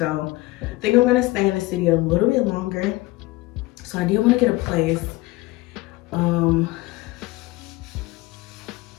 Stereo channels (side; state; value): right; quieter; 20.1 dB